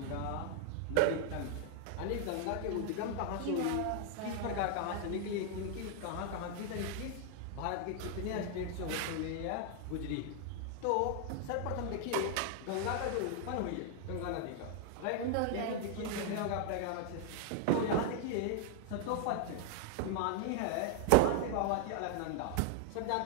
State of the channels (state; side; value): different; both; correlation 0.00